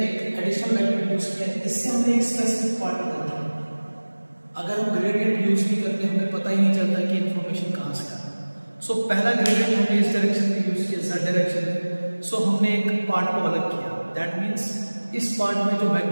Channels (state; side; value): inverted; both; correlation -1.00